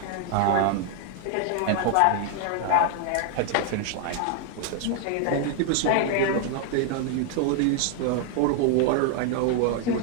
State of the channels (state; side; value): different; both; correlation 0.00